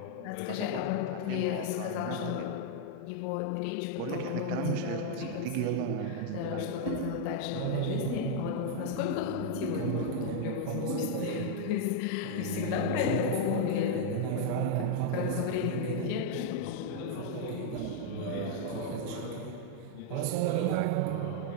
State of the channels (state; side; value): different; both; correlation -0.01